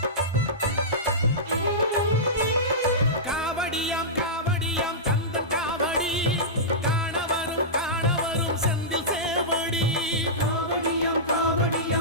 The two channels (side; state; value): both; normal; correlation -0.16